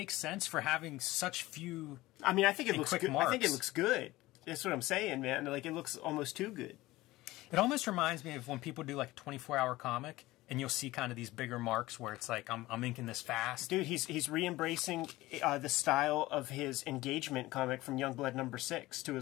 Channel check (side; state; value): right; quieter; 18.3 dB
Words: sense for having such few. I mean, I think it looks good. Marks. I think it looks good. That's what I'm saying, man. Like, it looks almost too good. It almost reminds me of when people do like a 24-hour comic, and you'll see kind of these bigger marks where it's like, I'm inking this fast. Dude, he's re-embracing the style of his engagement comic from Youngblood #6 to